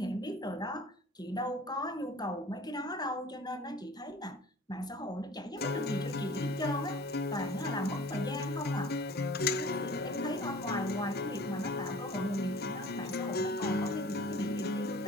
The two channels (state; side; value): normal; both; correlation 0.46